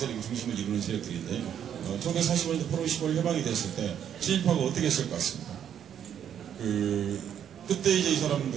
중심을 이루는 세력들인데 1945년도 포럼 15일 해방이 됐을 때 친일파가 어떻게 했을 것 같습니까? 그때 이제 이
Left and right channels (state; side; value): quieter; left; 9.3 dB